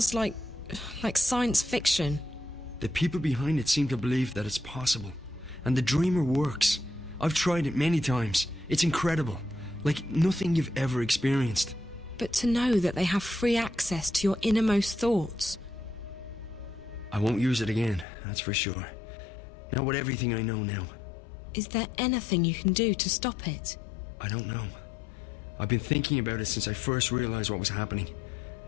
like science fiction. The people behind it seem to believe that it's possible. And the Dreamer works. I've tried it many times. It's incredible. Like nothing you've ever experienced. But to know that they have free access to your innermost thoughts... I won't use it again, that's for sure. Not with everything I know now. Is there anything you can do to stop it? I don't know. I've been thinking about it since I first realized what was happening.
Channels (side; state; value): right; drops out; at 18.1 s